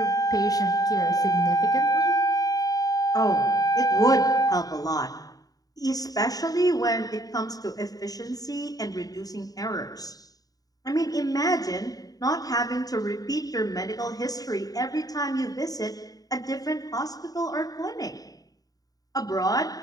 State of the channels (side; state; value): right; late; 0.18 ms